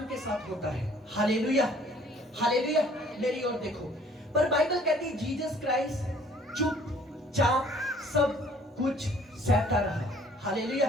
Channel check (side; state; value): both; normal; correlation 0.56